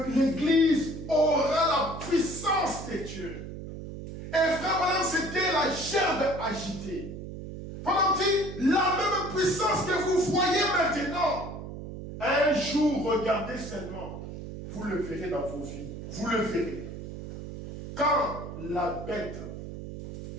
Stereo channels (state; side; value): noise; right; hum, 10 dB below the sound